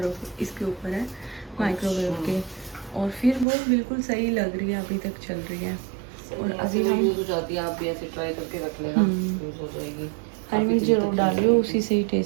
इसके ऊपर है माइक्रोवेव के, और फिर वो बिल्कुल सही लग रही है, अभी तक चल रही है। और अभी हम यूज हो जाती है, आप भी ऐसे ट्राई करके रख लेना, यूज हो जाएगी। हरी मिर्च जरूर डालियो, उसी से ही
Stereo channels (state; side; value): drops out; left; at 3.5 s